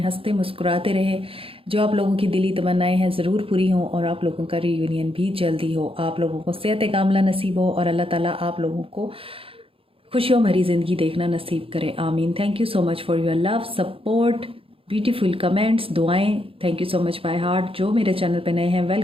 हंसते मुस्कुराते रहें। जो आप लोगों की दिली तमन्नाएं हैं ज़रूर पूरी हों और आप लोगों का रीयूनियन भी जल्दी हो। आप लोगों को सेहत कामला नसीब हो और अल्लाह ताला आप लोगों को खुशियों भरी ज़िंदगी देखना नसीब करे। आमीन। Thank you so much for your love, support, beautiful comments, दुआएं। Thank you so much by heart. जो मेरे चैनल पे नए हैं,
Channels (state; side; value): late; left; 0.27 ms